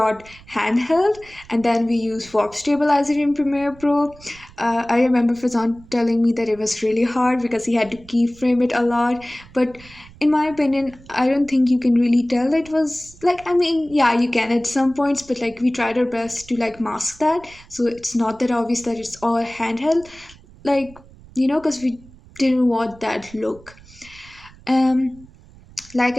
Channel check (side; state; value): right; noise; rumble, 23 dB below the sound